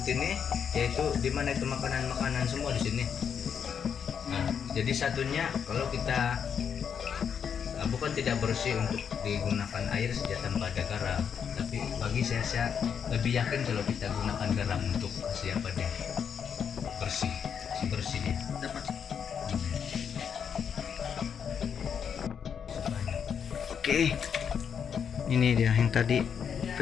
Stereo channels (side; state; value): right; quieter; 7.4 dB